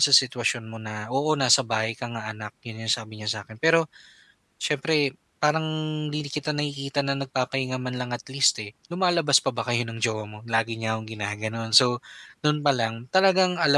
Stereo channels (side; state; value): both; identical; correlation 1.00